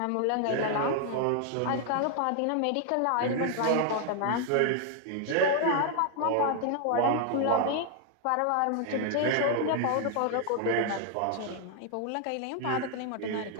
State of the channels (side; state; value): both; different; correlation 0.00